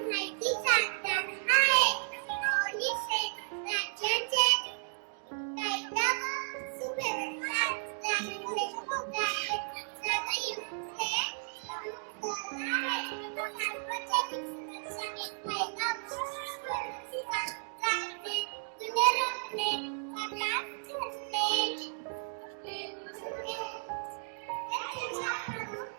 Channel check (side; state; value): left; silent; digital silence